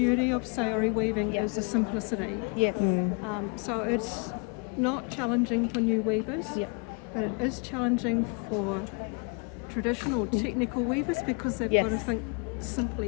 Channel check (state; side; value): quieter; right; 35.1 dB